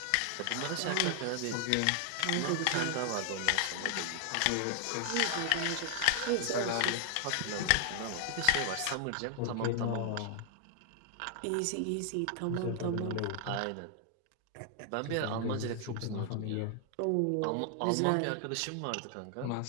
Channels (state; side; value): different; both; correlation 0.00